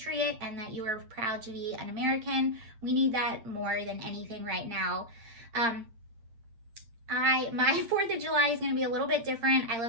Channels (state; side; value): late; left; 8.7 ms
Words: and that you are proud to be an American. We need that more than anything right now. My 4th of July is going to be a little bit different. I